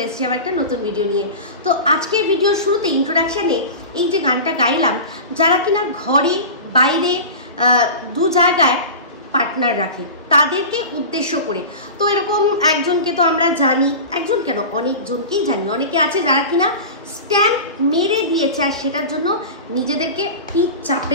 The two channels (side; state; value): both; inverted; correlation -0.31